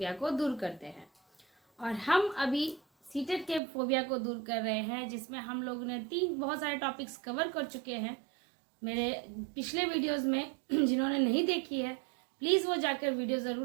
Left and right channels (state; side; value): drops out; left; at 3.6 s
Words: को दूर करते हैं। और हम अभी सीटेट के फोबिया को दूर कर रहे हैं, जिसमें हम लोगों ने बहुत सारे टॉपिक्स कवर कर चुके हैं मेरे पिछले वीडियोस में। जिन्होंने नहीं देखी है प्लीज़ वो जाकर वीडियो